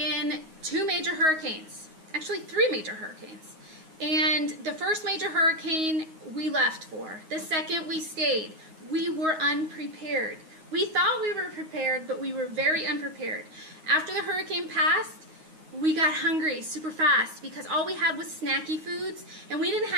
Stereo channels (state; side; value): late; left; 9.5 ms